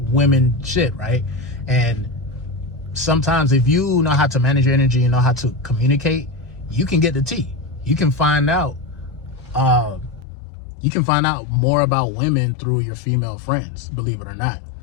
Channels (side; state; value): right; drops out; at 10.2 s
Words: women shit, right? And sometimes if you know how to manage your energy and know how to communicate, you can get the tea. You can find out more about women through your female friends, believe it or not.